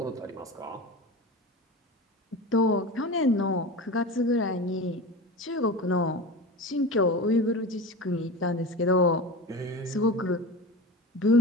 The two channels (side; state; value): both; normal; correlation 0.30